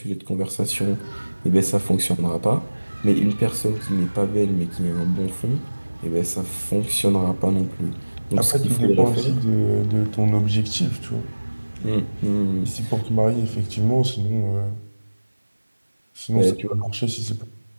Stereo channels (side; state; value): both; inverted; correlation -1.00